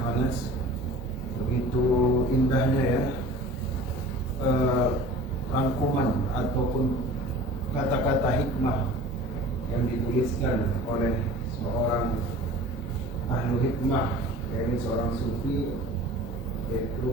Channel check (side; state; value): both; normal; correlation 0.42